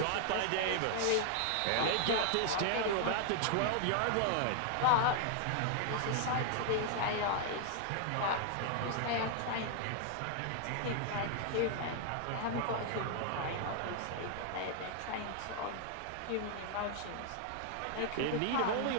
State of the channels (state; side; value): different; both; correlation 0.00